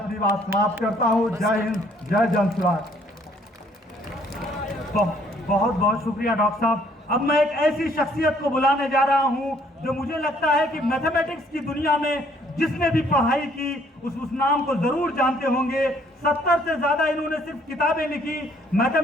बात समाप्त करता हूं। जय हिंद, जय जनसुराज। बहुत बहुत शुक्रिया डॉक्टर साहब। अब मैं एक ऐसी शख्सियत को बुलाने जा रहा हूं जो मुझे लगता है कि मैथमेटिक्स की दुनिया में जिसने भी पढ़ाई की उस नाम को जरूर जानते होंगे। 70 से ज्यादा इन्होंने सिर्फ किताबें लिखी।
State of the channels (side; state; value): both; normal; correlation 0.63